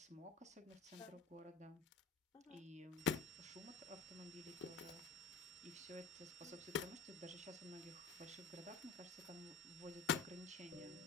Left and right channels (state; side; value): quieter; right; 4.8 dB